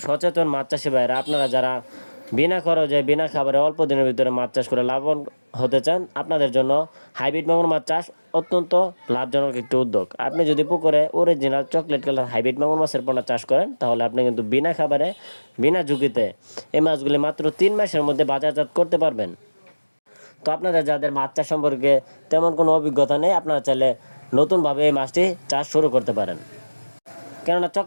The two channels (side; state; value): both; inverted; correlation -1.00